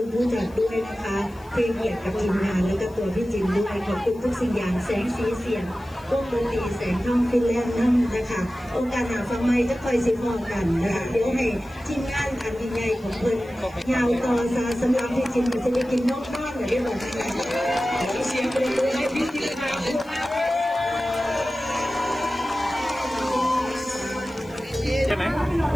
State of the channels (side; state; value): left; noise; hiss, 28 dB below the sound